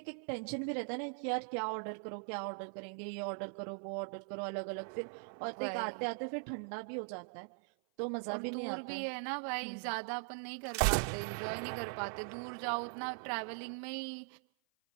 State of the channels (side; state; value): left; silent; 51 dB below the other